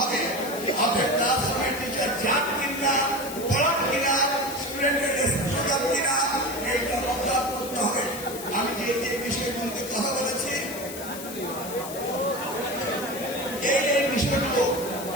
হবে। আপনার ক্লাসরুমের টিচার যান কিনা, পড়ান কিনা, স্টুডেন্টের রেসপন্স কিনা, এইটা অবজার্ভ করতে হবে। আমি যে বিষয়গুলোতে কথা বলেছি এই বিষয়গুলো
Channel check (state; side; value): noise; left; hiss, 11 dB below the sound